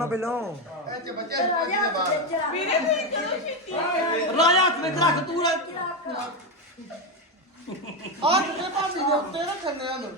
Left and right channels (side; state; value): both; normal; correlation 0.11